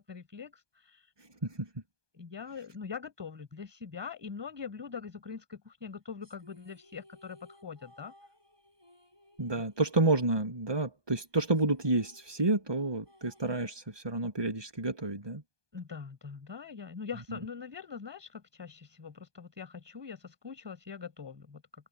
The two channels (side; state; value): left; late; 1.2 ms